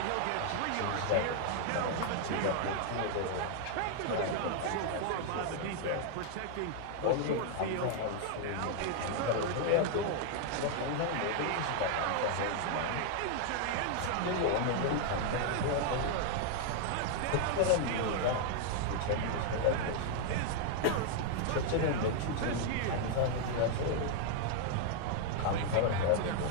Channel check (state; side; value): different; both; correlation 0.00